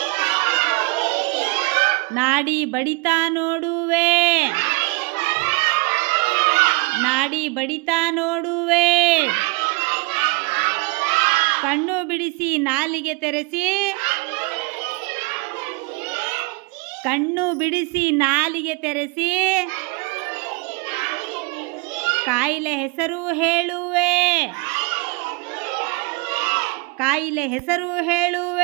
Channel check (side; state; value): left; quieter; 27.4 dB